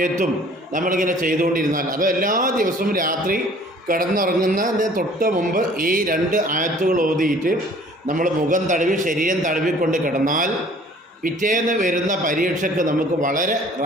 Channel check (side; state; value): both; normal; correlation 0.52